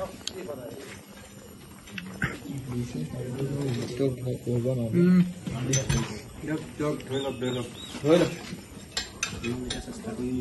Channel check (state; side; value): identical; both; correlation 1.00